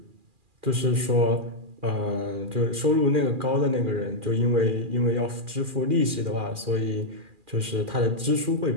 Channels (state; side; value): late; left; 2.4 ms